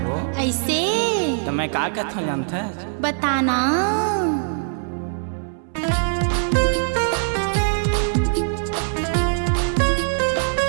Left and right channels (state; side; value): silent; left; 64 dB below the other